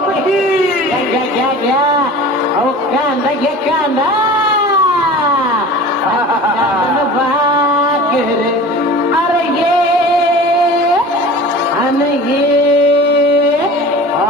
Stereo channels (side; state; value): both; normal; correlation 0.39